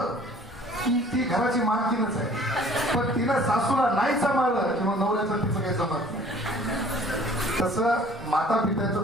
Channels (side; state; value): both; normal; correlation 0.52